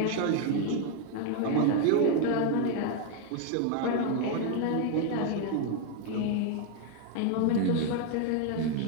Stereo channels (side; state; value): both; different; correlation 0.01